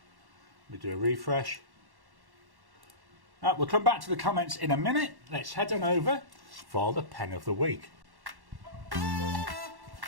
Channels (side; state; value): left; late; 1.1 ms